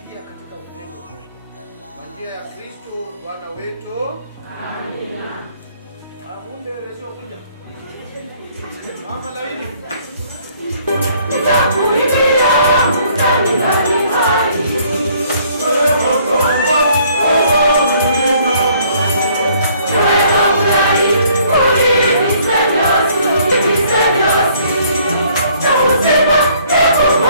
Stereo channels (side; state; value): both; inverted; correlation -0.62